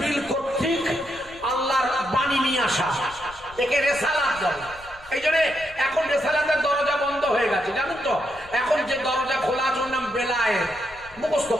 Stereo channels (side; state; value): left; noise; rumble, 21 dB below the sound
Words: কর্তৃক আল্লাহর বাণী নিয়ে আসা, একে রিসালাত বলে। এই জন্য এখন রিসালাতের দরজা বন্ধ হয়ে গেছে, জানেন তো? এখন যে দরজা খোলা আছে ওর নাম বেলায়েত, মুখস্থ